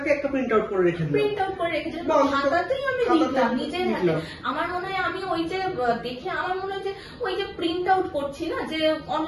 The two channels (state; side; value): identical; both; correlation 1.00